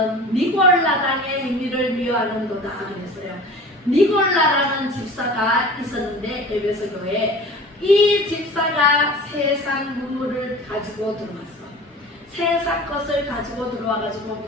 니골라당의 행위를 미워하는도다 그랬어요. 니골라라는 집사가 있었는데 에베소 교회에 이 집사가 세상 문물을 가지고 들어왔어. 세상 것을 가지고 들어와가지고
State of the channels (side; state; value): both; normal; correlation 0.40